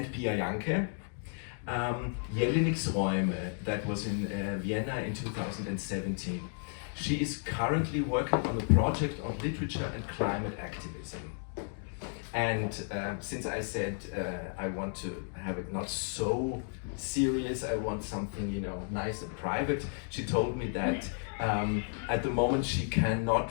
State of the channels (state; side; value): silent; right; 56 dB below the other